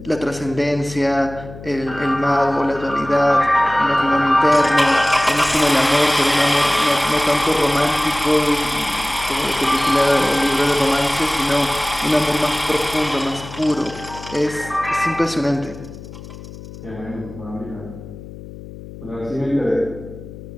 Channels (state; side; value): noise; left; hum, 15 dB below the sound